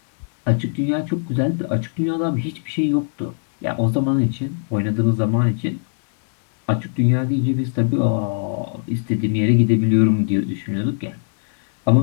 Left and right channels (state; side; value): silent; right; digital silence